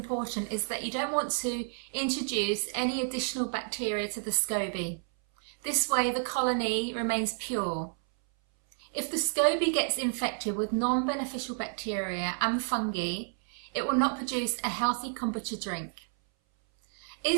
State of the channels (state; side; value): silent; left; 58 dB below the other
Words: is that you don't want to introduce any additional bacteria to the Scoby. This way the colony remains pure. If the Scoby gets infected with non-beneficial bacteria and fungi, it will not produce a healthy kombucha drink.